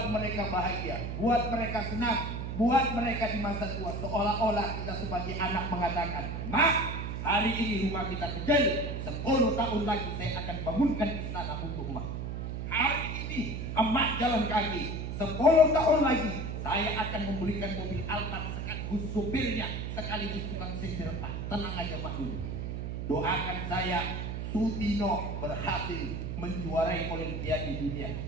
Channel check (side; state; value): right; noise; hum, 4 dB below the sound